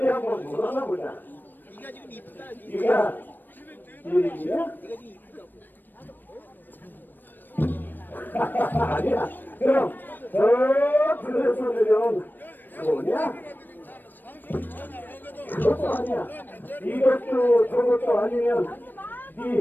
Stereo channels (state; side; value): late; right; 0.092 ms